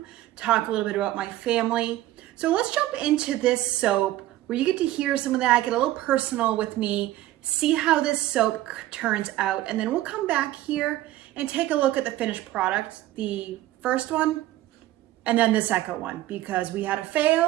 talk a little bit about my family. So let's jump into this soap where you get to hear some of that, get a little personal with me, see how this soap turns out, and then we'll come back here and take a look at the finished product, the first one, and then the second one, because we had a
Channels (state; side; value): quieter; left; 15.3 dB